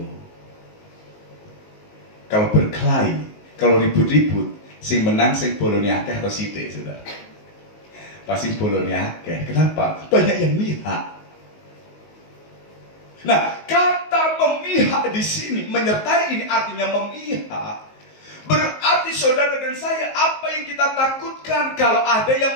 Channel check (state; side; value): late; right; 19 ms